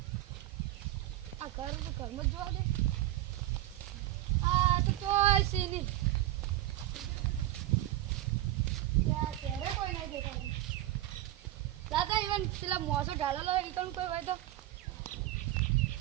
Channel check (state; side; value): quieter; left; 14.9 dB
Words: આ ઘરમાં જ જોવા દે. આ તો ચોય સીની ત્યારે કોઈ નહીં દેખાતું. દાદા ઇવન પેલા મોસો ઢાળેલો હોય ઈ કોઈ હોય તો